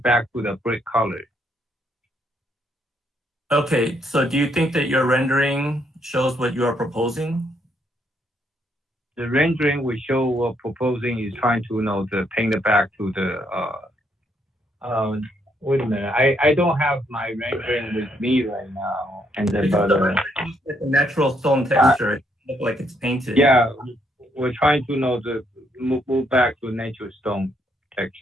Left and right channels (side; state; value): both; normal; correlation 0.73